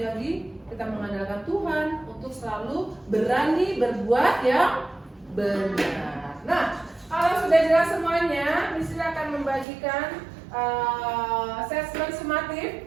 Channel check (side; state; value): left; drops out; at 9.7 s